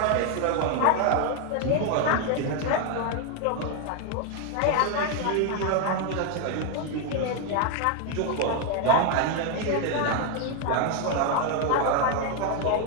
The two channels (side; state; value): both; different; correlation 0.01